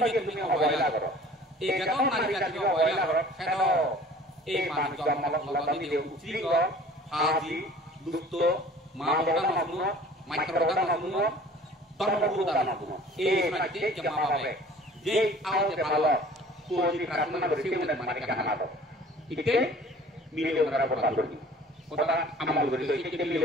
punya awal lah. Kalau nari jadi awal lah. Kalau manusia malam ni dia ucap Haji, Dusto, Mabokan semua, Mikrokan semua, Torbukan semua. Nanti jemaah apa? Jadi awal kalau suci kerana bersih dan mereka nak tahu. Itu milion orang bertabur. Kota amal begitu. Itu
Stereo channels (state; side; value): normal; both; correlation 0.48